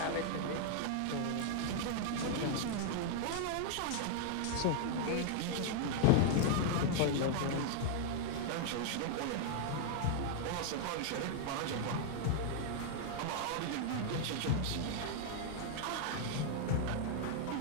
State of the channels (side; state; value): both; different; correlation 0.00